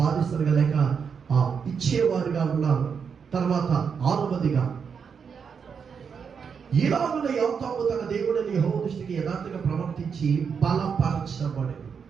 లేక ఇచ్చేవారుగా ఉన్నారు. తర్వాత 6వదిగా ఈలాగున యోతాము తన దేవుడైన యెహోవా దృష్టికి యథార్థంగా ప్రవర్తించి బలపరచబడెను.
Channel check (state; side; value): quieter; left; 6.4 dB